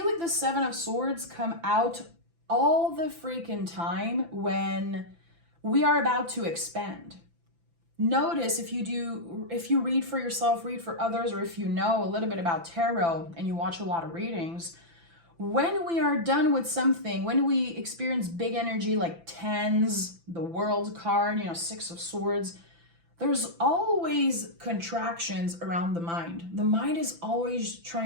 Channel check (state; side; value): late; left; 5.9 ms